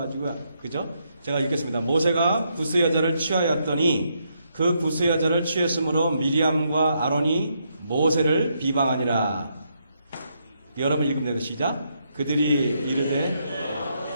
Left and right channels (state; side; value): inverted; both; correlation -0.77